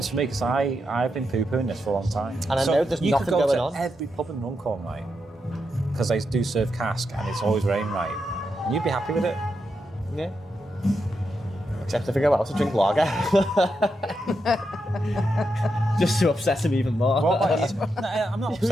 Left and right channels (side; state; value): both; normal; correlation 0.84